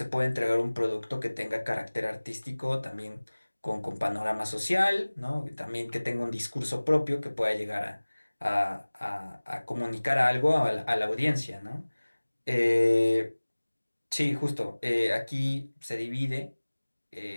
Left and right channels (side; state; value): both; inverted; correlation -1.00